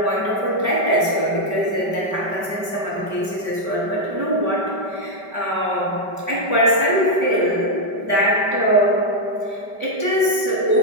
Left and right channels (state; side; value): late; left; 5.1 ms